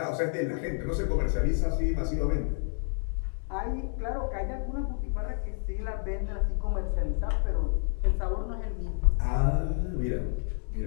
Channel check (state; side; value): silent; right; 58 dB below the other